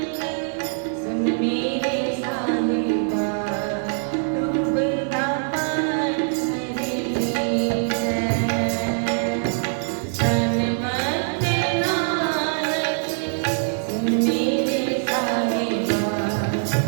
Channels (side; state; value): left; silent; 63 dB below the other